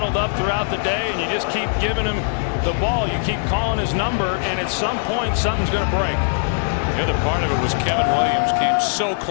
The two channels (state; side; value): silent; right; 57 dB below the other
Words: up throughout the day, and you just keep giving him the ball. You keep calling his number, and at some point, something's going to break. The other part of it was Kevin Williams came so